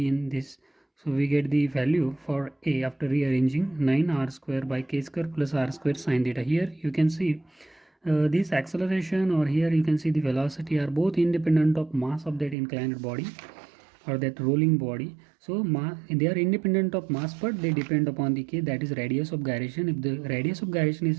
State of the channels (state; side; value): drops out; left; at 12.6 s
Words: in this, so we get the value for a after rearranging 9r square by k square plus r square sine theta. Here you can see this acceleration, or here you can see the velocity, are both independent of mass of that inclined body or that rolling body. So they are independent of mass, but they depend upon the k, that is radius of gyration. If the radius of gyration